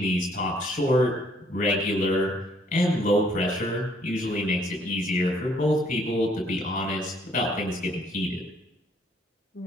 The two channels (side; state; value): both; normal; correlation 0.64